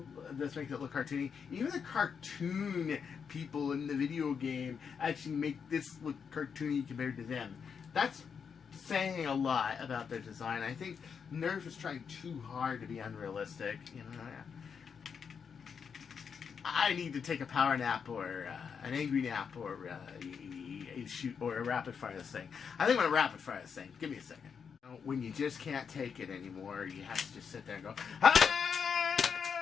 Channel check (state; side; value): quieter; right; 6.5 dB